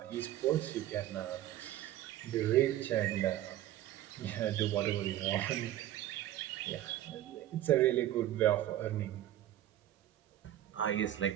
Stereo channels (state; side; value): quieter; left; 13.3 dB